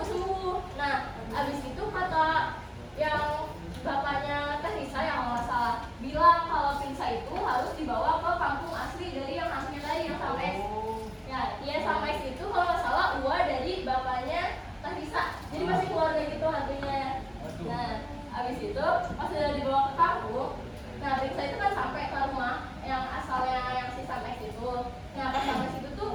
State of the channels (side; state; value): both; identical; correlation 1.00